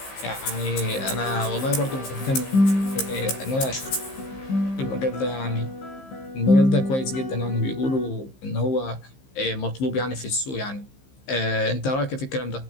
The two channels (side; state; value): right; late; 15 ms